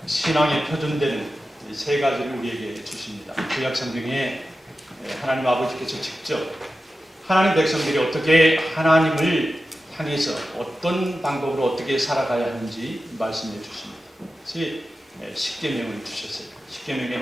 신앙에 표준되는 세 가지를 우리에게 주십니다. 구약 성경에 하나님 아버지께서 직접 하나님 백성들이 어떻게 하나님을 향해서 어떤 방법으로 어떻게 살아가야 하는지 말씀해 주십니다. 그래서 십계명을 주셨어요.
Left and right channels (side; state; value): both; normal; correlation 0.93